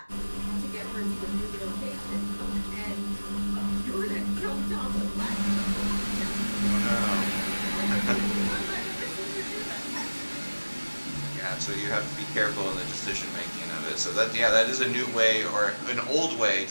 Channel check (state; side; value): inverted; both; correlation -1.00